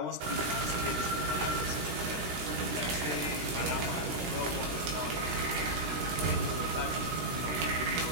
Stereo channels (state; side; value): late; left; 16 ms